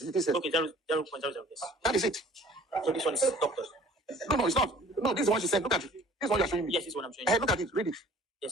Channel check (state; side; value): normal; both; correlation 0.51